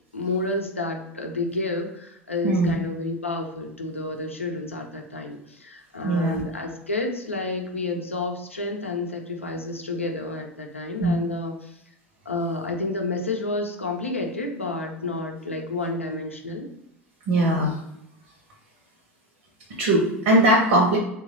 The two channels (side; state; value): both; normal; correlation 0.08